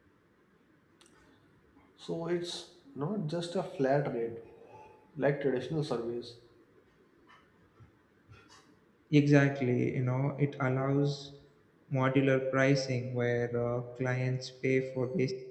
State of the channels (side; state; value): both; identical; correlation 1.00